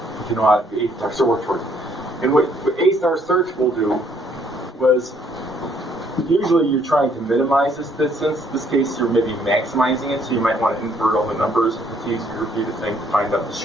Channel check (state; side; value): normal; both; correlation 0.66